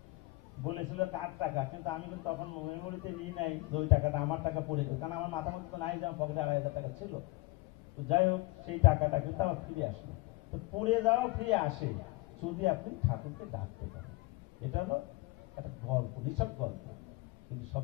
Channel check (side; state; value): right; quieter; 22.1 dB